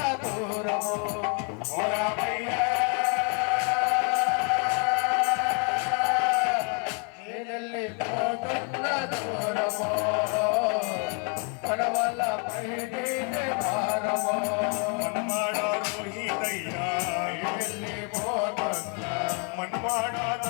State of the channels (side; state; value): right; quieter; 38.0 dB